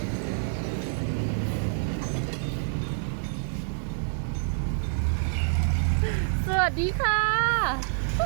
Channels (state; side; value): silent; left; 60 dB below the other